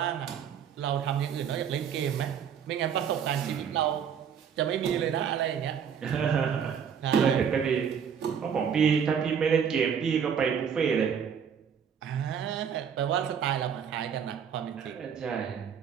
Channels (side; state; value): left; quieter; 7.6 dB